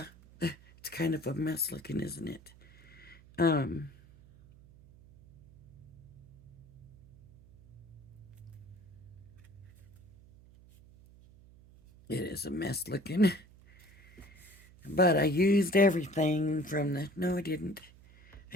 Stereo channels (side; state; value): right; noise; hum, 23 dB below the sound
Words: it's kind of a mess looking, isn't it? It is a mess looking. But I used everything from the... No, I didn't.